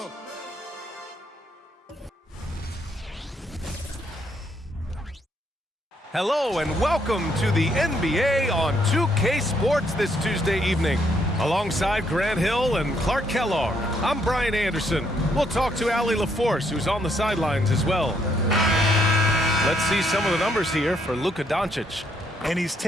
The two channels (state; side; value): normal; both; correlation 0.72